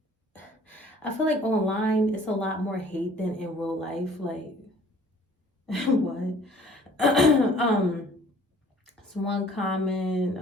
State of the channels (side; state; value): both; normal; correlation 0.53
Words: online it's a lot more hate than in real life. Like, what? It's one comment.